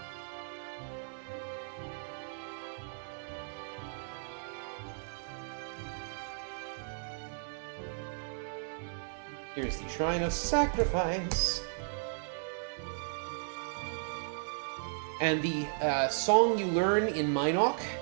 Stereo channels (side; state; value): left; silent; digital silence